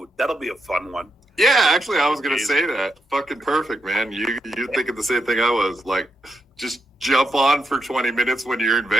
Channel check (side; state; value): both; normal; correlation 0.81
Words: That'll be a fun one. Yeah, actually, I was gonna say that. Fucking perfect, man. You're thinking the same thing I was. Like, just jump on for 20 minutes when you're in